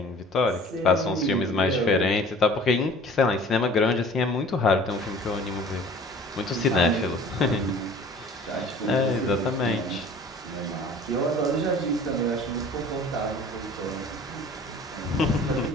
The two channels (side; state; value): both; normal; correlation 0.47